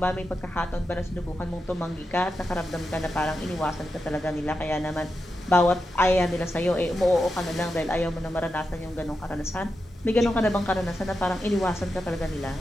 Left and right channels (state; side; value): normal; both; correlation 0.88